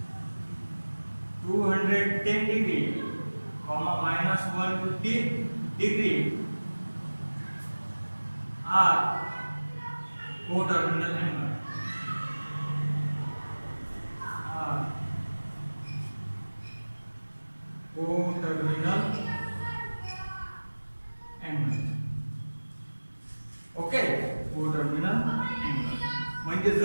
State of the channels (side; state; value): both; inverted; correlation -1.00